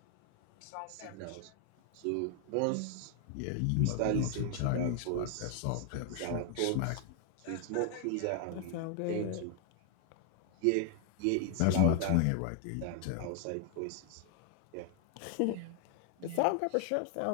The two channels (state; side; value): different; both; correlation 0.00